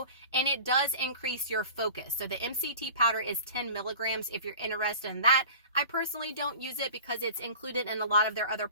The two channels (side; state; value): both; inverted; correlation -0.39